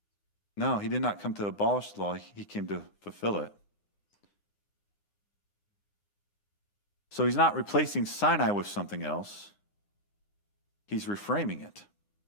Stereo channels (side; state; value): right; late; 10 ms